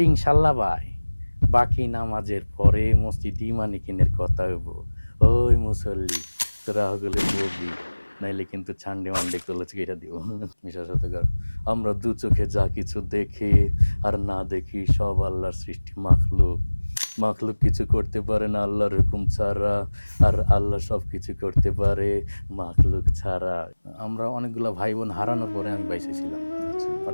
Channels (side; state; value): both; inverted; correlation -1.00